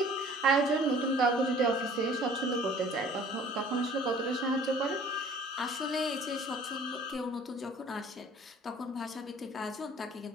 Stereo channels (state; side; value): normal; both; correlation 0.51